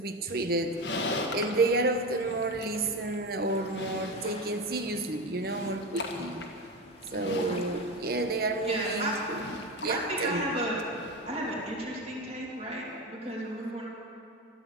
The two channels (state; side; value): normal; both; correlation 0.21